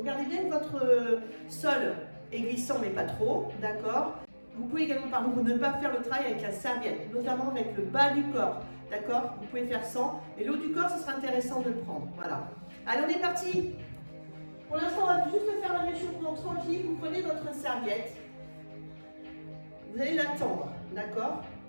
bien que votre sol est glissant, mais pas trop, d'accord. Vous pouvez également, par contre, ne pas faire le travail avec la serviette, notamment avec le bas du corps, d'accord. Vous pouvez faire sans, mais le haut du corps, ce sera intéressant de le prendre, voilà. Allez, on est parti. Pour l'instant, on va juste faire un réchauffement tranquille. Vous prenez votre serviette, vous allez la tendre, d'accord.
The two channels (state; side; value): inverted; both; correlation -1.00